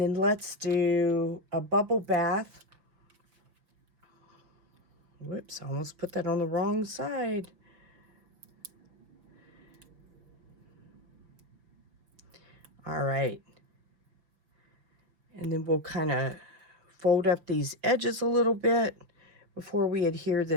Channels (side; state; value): left; late; 5.9 ms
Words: let's do a bubble bath. Whoops, I almost put that on the wrong side. All right. And then we'll kind of fold up these edges a little bit before we adhere